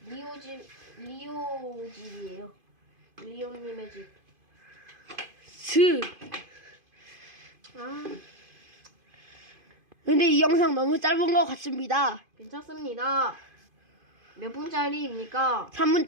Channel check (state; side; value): late; left; 2.5 ms